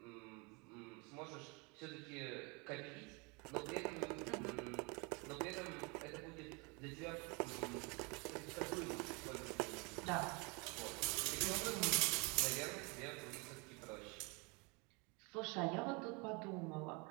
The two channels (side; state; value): left; quieter; 29.8 dB